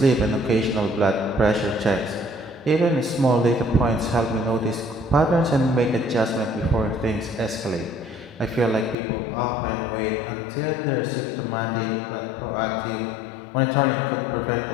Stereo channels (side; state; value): right; drops out; at 9.0 s